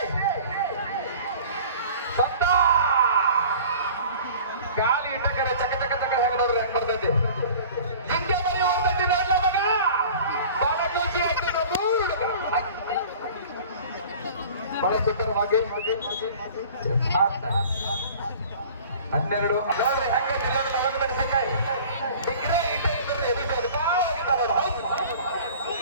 ಸತ್ತ ಕಾಲಿ ಇಟ್ಟಕರೆ ಚಕ ಹೆಂಗ ನೋಡ್ರಿ ಹೆಂಗ್ ಬರ್ತೈತಿ. ಹಿಂಗೆ ಬರೀ ಹೋಗ್ತೈತಿ ನೋಡ್ಲ ಮಗ. ಬಹಳ ಖುಷಿ ಆಯ್ತು ನಮ್ಮ ಹುಡುಗ. ಬಹಳ ಸುಂದರವಾಗಿ 12 ನೋಡ್ರಿ ಹೆಂಗೆ ಮೆಣಸಿನಕಾಯಿ ಡಿಗ್ರಿ ಇಟ್ಟೆ ಇದ್ರಿ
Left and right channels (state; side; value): inverted; both; correlation -0.44